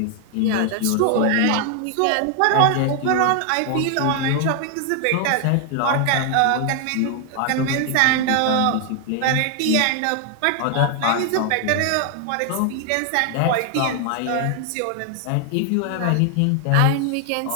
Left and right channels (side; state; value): both; different; correlation 0.00